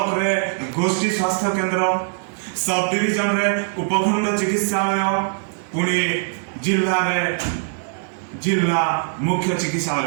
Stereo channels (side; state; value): left; silent; digital silence